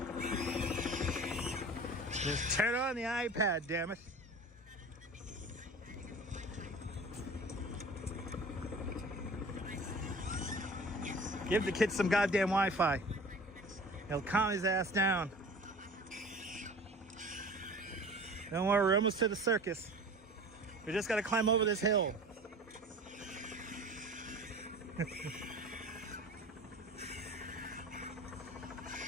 Just turn on the iPad, damn it. Give the kid some goddamn Wi-Fi. He'll calm his ass down. Don't worry, we're almost to the circus. We just gotta climb over this hill.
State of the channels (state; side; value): normal; both; correlation 0.41